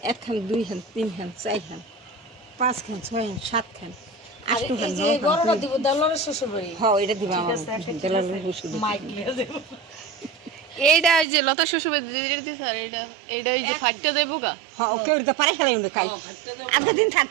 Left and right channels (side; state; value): left; drops out; at 11.2 s